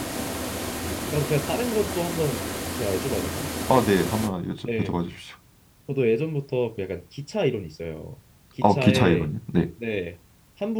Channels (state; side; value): identical; both; correlation 1.00